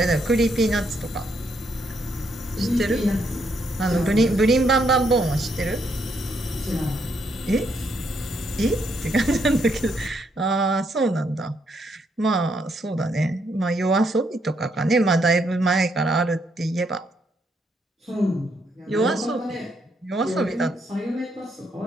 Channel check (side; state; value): both; normal; correlation 0.75